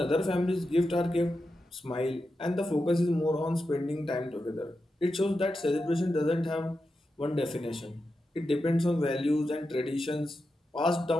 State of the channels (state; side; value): normal; both; correlation 0.89